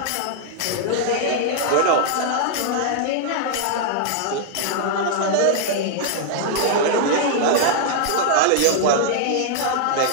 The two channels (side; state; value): both; different; correlation -0.01